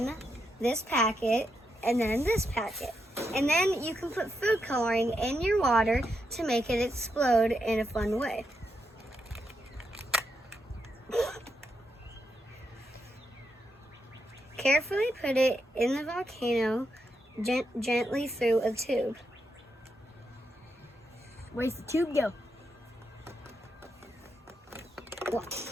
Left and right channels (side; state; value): both; normal; correlation 0.83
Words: this packet and then this packet. And then you can put food coloring in your water to make it explode in a fun way. Carefully put it in the volcano gently through a tube. Where's the tube go? Well,